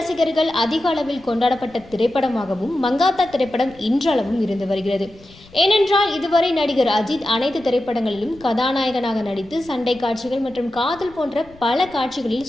அதிக அளவில் கொண்டாடப்பட்ட திரைப்படமாகவும் மங்காத்தா திரைப்படம் இன்றளவும் இருந்து வருகிறது. ஏனென்றால் இதுவரை நடிகர் அஜித் அனைத்து திரைப்படங்களிலும் கதாநாயகனாக நடித்து சண்டை காட்சிகள் மற்றும் காதல் போன்ற பல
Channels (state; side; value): noise; left; rumble, 24 dB below the sound